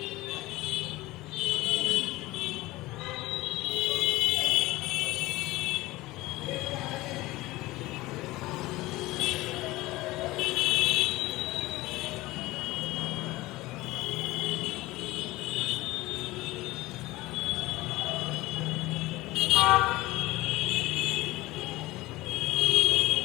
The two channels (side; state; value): right; quieter; 19.2 dB